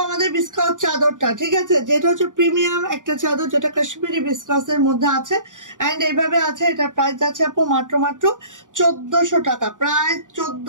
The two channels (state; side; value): late; left; 0.87 ms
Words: আমাদের বিস্কাস চাদরটা, ঠিক আছে, যেটা হচ্ছে প্রিমিয়াম একটা চাদর, যেটা কাশ্মীরি বিস্কাসের মধ্যে আছে, এন্ড এইভাবে আছে। এটা প্রাইস আছে আপু মাত্র 1400 টাকা, প্রাইস